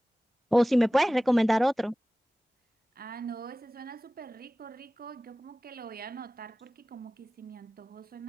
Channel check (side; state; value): both; normal; correlation 0.97